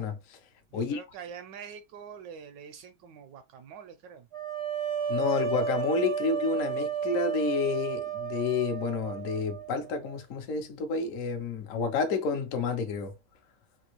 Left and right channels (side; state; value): both; normal; correlation 0.10